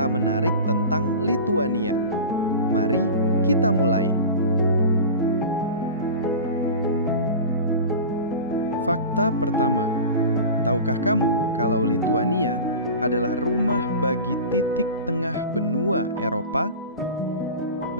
menarik tentang Lituania. Mari kita mulai. Fakta pertama. Tahukah kamu kalau Lituania adalah rumah bagi titik tengah benua Eropa?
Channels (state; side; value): inverted; both; correlation -0.32